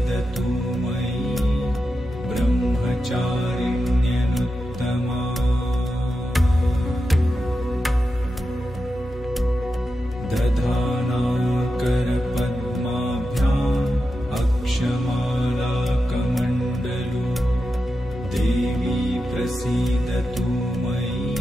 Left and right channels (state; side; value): normal; both; correlation 0.89